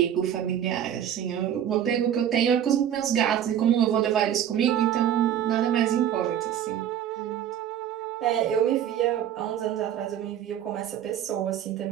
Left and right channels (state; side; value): quieter; left; 10.1 dB